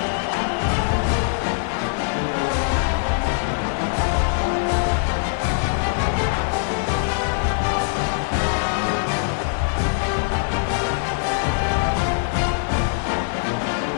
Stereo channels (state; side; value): silent; right; 64 dB below the other